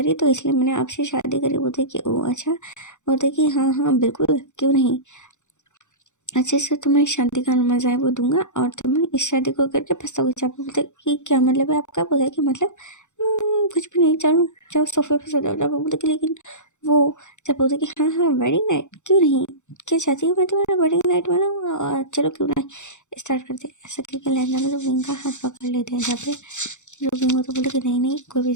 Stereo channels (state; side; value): late; right; 0.84 ms